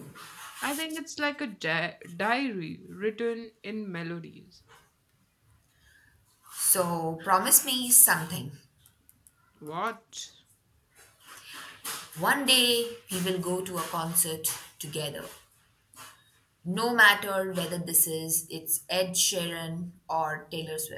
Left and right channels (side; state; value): both; identical; correlation 1.00